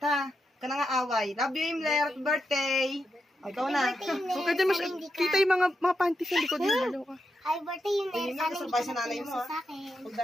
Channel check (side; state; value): both; normal; correlation 0.85